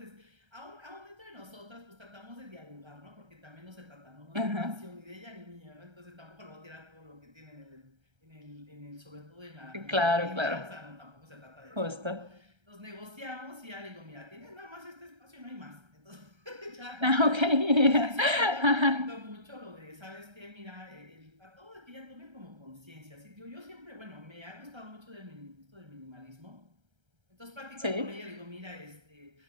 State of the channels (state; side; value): late; left; 1.3 ms